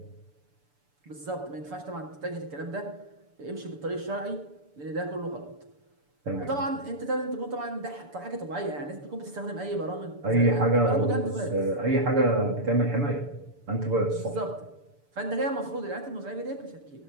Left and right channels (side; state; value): left; late; 6.9 ms